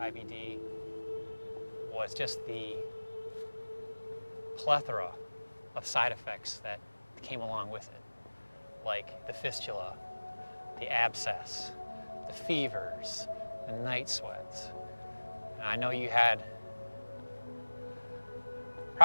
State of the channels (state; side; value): inverted; both; correlation -1.00